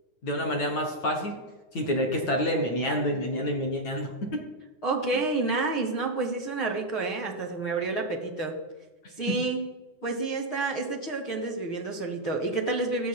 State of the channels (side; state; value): right; late; 9.6 ms